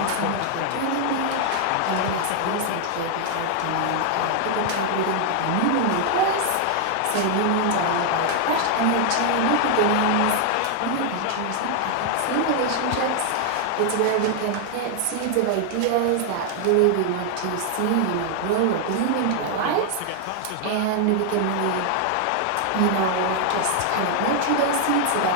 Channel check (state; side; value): different; both; correlation 0.00